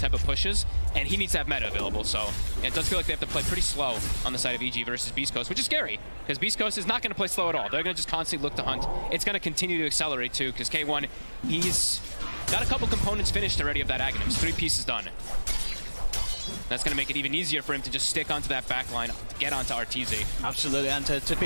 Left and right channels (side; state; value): both; inverted; correlation -1.00